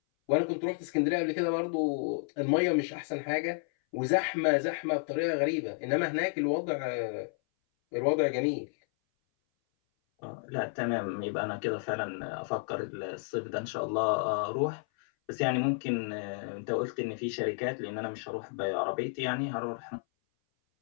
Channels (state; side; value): silent; right; 57 dB below the other